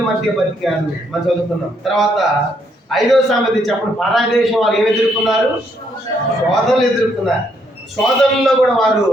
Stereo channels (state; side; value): normal; both; correlation 0.73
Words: మధ్య బతికారు మనం చదువుకున్నాం. తర్వాత 5వ సంగతి చెప్పండి, పరాయి దేశం వాళ్ళు ఏమి ఎదుర్కొన్నారు? శోధనలు ఎదుర్కొన్నారు. శోధనలో కూడా వారు